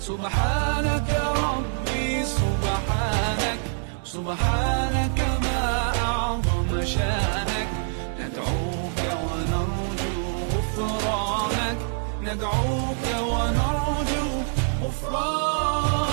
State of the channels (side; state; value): left; silent; 62 dB below the other